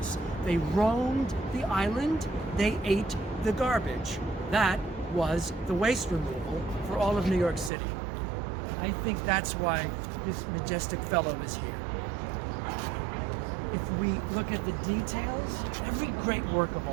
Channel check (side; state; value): left; drops out; at 7.7 s